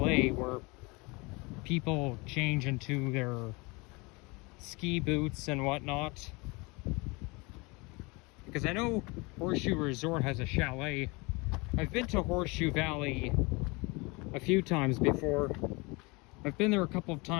where people change into their ski boots and whatnot. Because I know Horseshoe Resort has a chalet. I've been to Horseshoe Valley a few times before. I've been there a couple of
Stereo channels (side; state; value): right; quieter; 26.6 dB